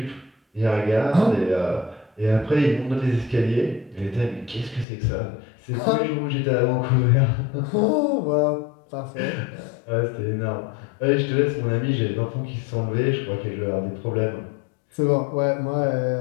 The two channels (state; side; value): drops out; right; at 4.9 s